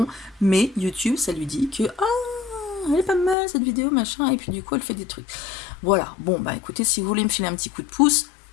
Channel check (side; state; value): right; drops out; at 3.4 s